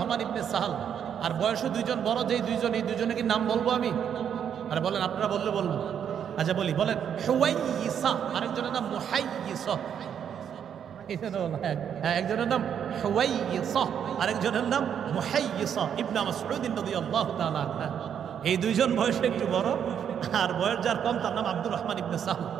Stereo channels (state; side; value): quieter; left; 8.5 dB